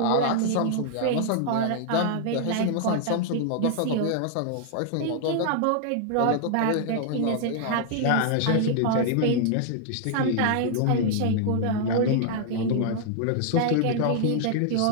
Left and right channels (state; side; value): different; both; correlation 0.00